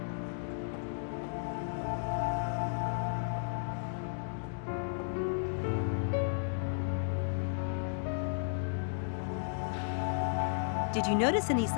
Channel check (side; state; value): right; silent; digital silence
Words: Did you notice any